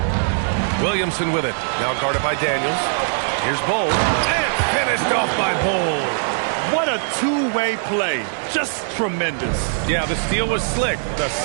Williamson with it. Now guarded by Daniels. Here's Bol. And finished off by Bol. What a two-way play. Just tremendous. Yeah, the steal was slick. The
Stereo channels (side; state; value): left; silent; digital silence